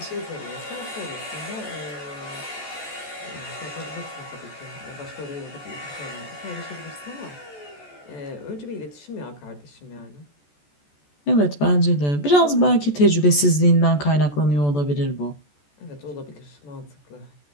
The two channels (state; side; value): late; right; 14 ms